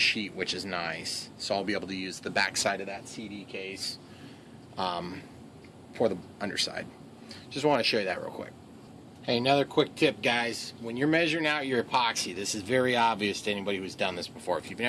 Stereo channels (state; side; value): identical; both; correlation 1.00